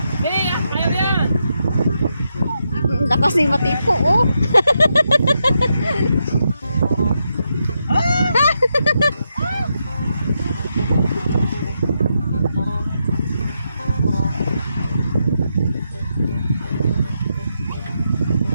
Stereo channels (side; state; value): both; inverted; correlation -0.83